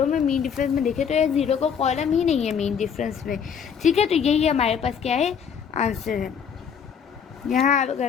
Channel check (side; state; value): right; quieter; 7.3 dB